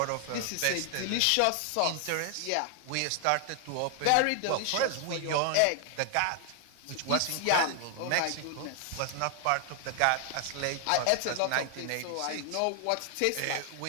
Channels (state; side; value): different; both; correlation 0.00